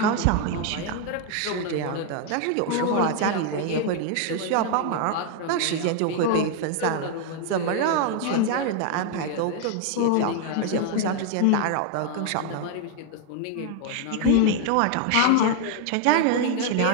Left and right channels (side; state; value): both; different; correlation 0.00